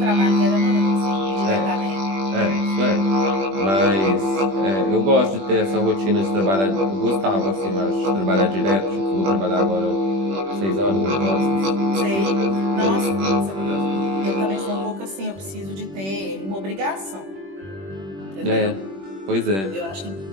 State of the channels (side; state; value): left; late; 21 ms